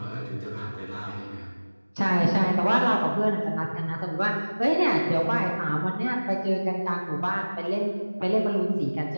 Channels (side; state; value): both; inverted; correlation -1.00